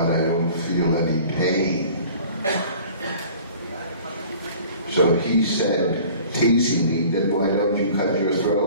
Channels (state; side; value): inverted; both; correlation -0.47